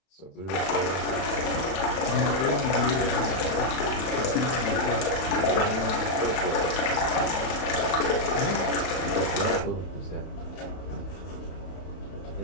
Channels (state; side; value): late; right; 31 ms